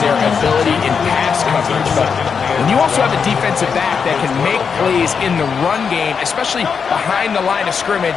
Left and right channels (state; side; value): quieter; right; 6.2 dB